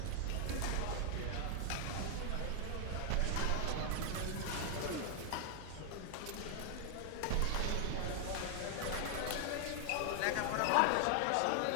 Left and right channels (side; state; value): both; different; correlation 0.00